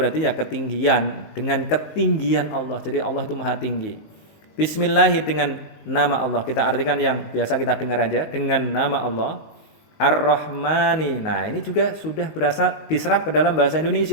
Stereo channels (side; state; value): right; late; 19 ms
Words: ya ketinggian, dengan ketinggian Allah. Jadi Allah itu maha tinggi. Bismillahi, dengan nama Allah. Kita artikan yang biasa kita dengar aja, dengan nama Allah. Ar-Rahmani. Nah, ini juga sudah berasal diserap ke dalam bahasa